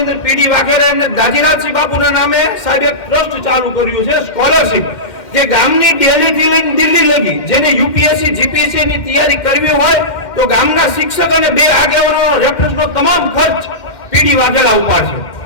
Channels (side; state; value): right; late; 2.1 ms